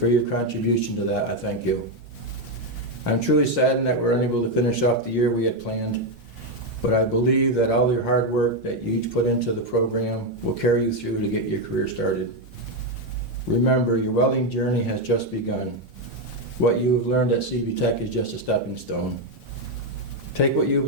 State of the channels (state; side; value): normal; both; correlation 0.05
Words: your contribution to that, I thank you. I'm truly saddened that we're unable to finish off the year we had planned, but I believe that all your hard work that you each put into the program will carry you through to get your career started. Remember, your welding journey has just begun. What you have learned at CV-TEC is just a stepping stone. Take what you've